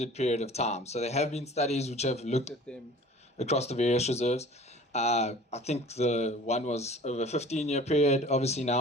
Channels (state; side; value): normal; both; correlation 0.45